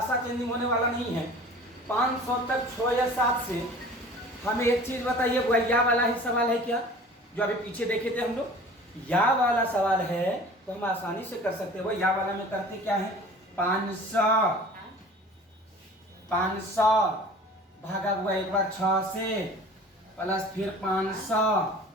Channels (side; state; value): both; normal; correlation 0.44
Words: चेंजिंग होने वाला नहीं है। 500 तक 6 या 7 से। हमें एक चीज बताइए, वह या वाला ही सवाल है क्या, जो अभी पीछे देखे थे हम लोग? या वाला सवाल है तो हम आसानी से कर सकते हैं। वो या वाला में करते क्या है, 500 भागा हुआ एक बार 6 से, प्लस फिर 500,